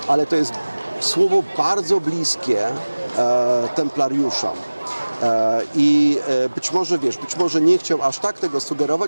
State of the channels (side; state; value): both; inverted; correlation -1.00